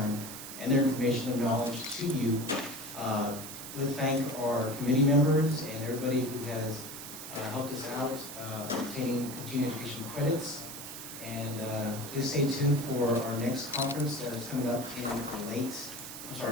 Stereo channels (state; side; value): noise; right; hiss, 10 dB below the sound